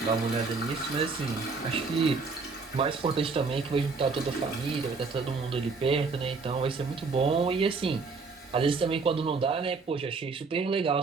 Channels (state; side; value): quieter; left; 4.4 dB